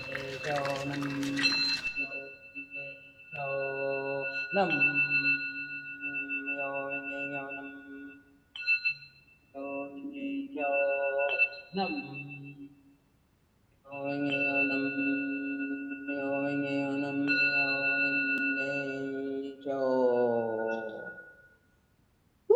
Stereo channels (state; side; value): identical; both; correlation 1.00